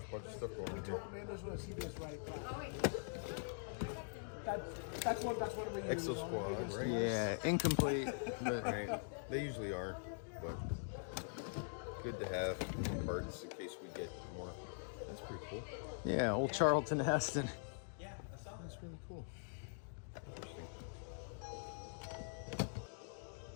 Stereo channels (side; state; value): right; silent; digital silence